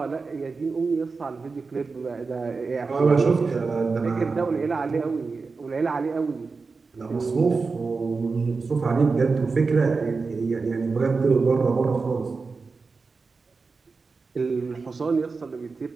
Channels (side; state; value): left; quieter; 4.4 dB